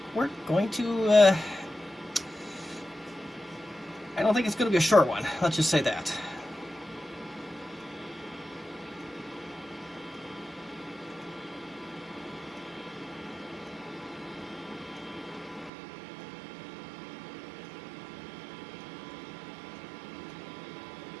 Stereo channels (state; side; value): drops out; left; at 15.7 s